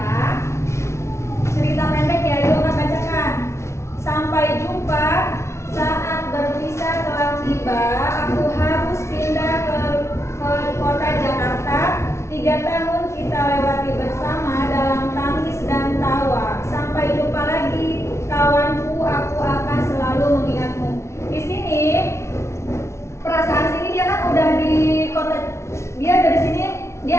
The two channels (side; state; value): right; late; 0.13 ms